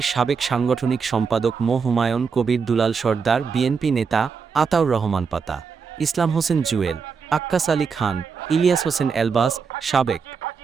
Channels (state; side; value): quieter; left; 5.7 dB